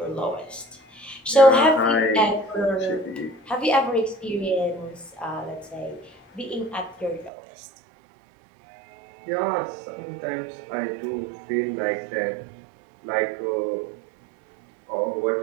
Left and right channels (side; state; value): left; drops out; at 7.3 s